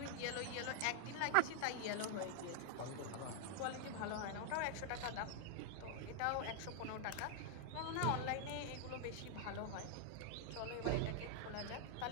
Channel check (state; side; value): different; both; correlation 0.00